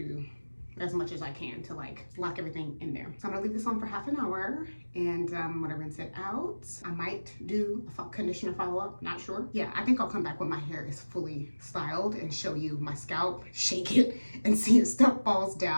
as much as I can to like lock everything in there. So I'm gonna leave this on for half an hour and I'm gonna rinse it out. I might do a conditioner follow-up, not sure. Yeah, I think I'll come back when my hair is fully styled and show you my scalp, shake it, and see if stuff falls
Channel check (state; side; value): inverted; both; correlation -1.00